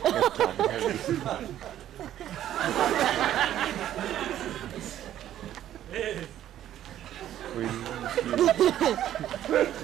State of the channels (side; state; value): left; quieter; 11.8 dB